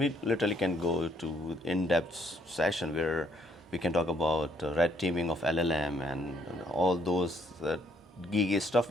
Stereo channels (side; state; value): both; normal; correlation 0.68